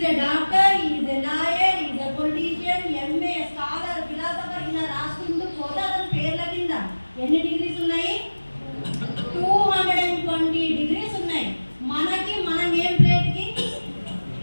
a doctor, he is a lawyer, he is a politician, MA, scholar, philosopher. ఇలా రాసుకుంటూ పోతే అతని పేర్ల కింద ఎన్ని డిగ్రీస్ ఉన్నాయి? 220 డిగ్రీస్ ఉన్నాయి. మనకి మన నేమ్ ప్లేట్కి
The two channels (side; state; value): both; inverted; correlation -1.00